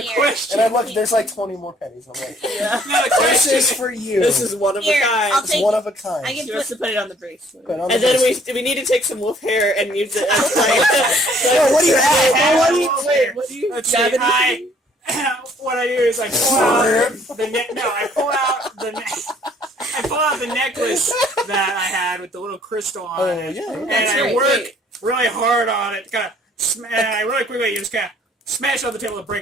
Here. question. And I'm like, there's like 20 more pennies. I'm like, Yeah. Now the this question is for you. This is one of a Here, kind. I'll It's take one of a kind. I can She wants to put it on the bracelet. Put on And the then bracelet. we need to take some wolf hair and use it as Yo, what do you have? What do you- Wait, what do you Let's have? see, what I do is I pull out the I pull out the necklace that I had with the little crystal on Oh, it, yeah. and That's I right. work really hard on it. Kind of, and I really quickly just kind of smash on the table to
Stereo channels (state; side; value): normal; both; correlation 0.60